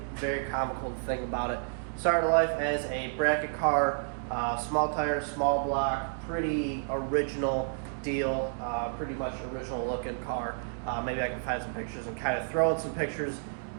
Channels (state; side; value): silent; left; digital silence